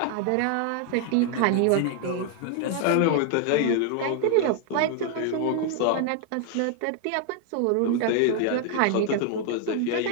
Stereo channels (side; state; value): both; different; correlation 0.00